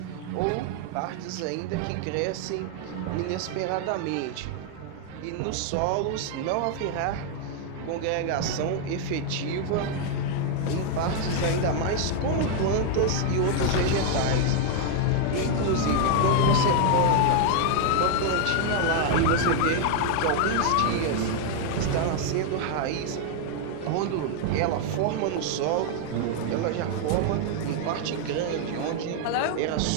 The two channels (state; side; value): different; both; correlation 0.00